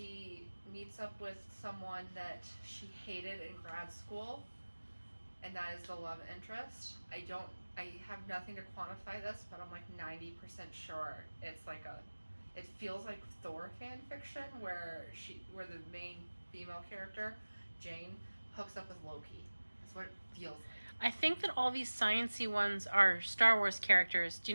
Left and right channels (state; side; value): inverted; both; correlation -1.00